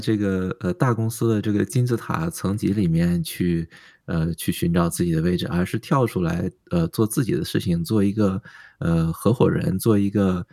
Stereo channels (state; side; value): identical; both; correlation 1.00